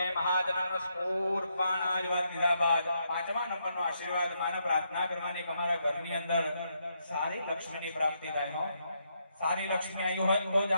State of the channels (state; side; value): inverted; both; correlation -0.78